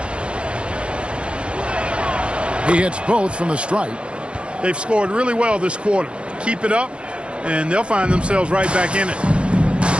He hits both from the stripe. They've scored really well this quarter. Keep it up, and they'll find themselves right back in it.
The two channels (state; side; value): late; left; 0.057 ms